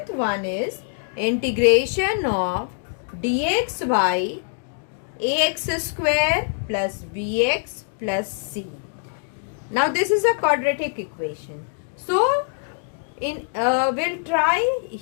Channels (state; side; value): silent; right; digital silence